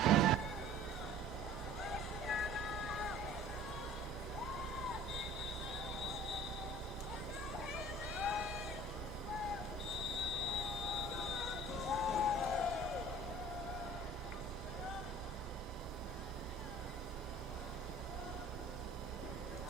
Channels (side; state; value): both; normal; correlation 0.48